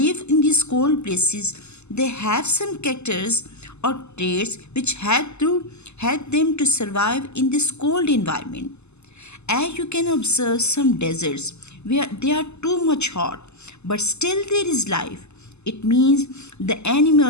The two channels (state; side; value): late; right; 0.81 ms